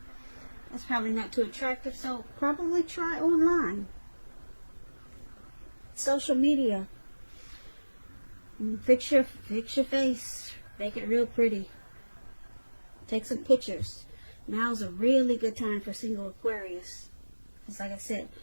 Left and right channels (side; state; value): both; inverted; correlation -1.00